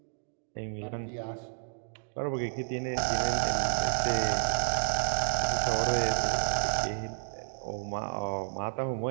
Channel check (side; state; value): left; silent; digital silence